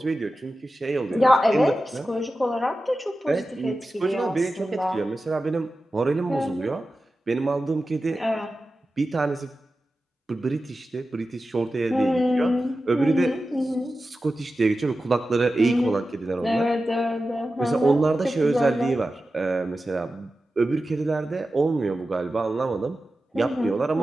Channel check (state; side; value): normal; both; correlation 0.93